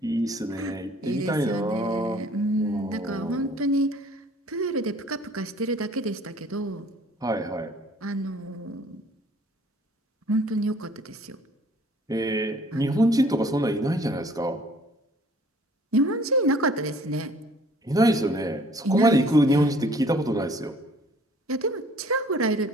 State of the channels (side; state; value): both; normal; correlation 0.55